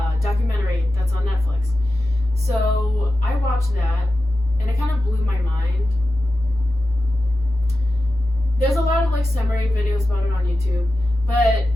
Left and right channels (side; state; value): both; normal; correlation 0.92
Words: documentary that's on Netflix. So I watched that and it kind of blew my mind. There's a lot of like summary videos about it on YouTube, but